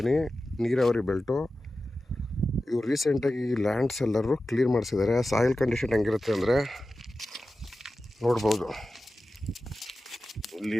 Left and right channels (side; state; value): both; normal; correlation 0.94